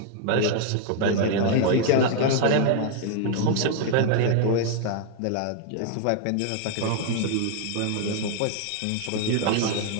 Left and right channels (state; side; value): different; both; correlation 0.00